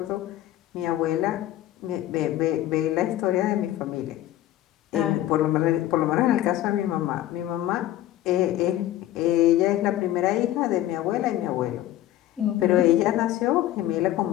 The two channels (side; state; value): right; quieter; 13.8 dB